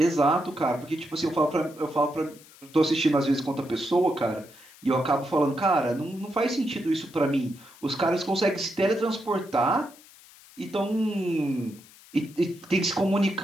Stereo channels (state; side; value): noise; left; hiss, 23 dB below the sound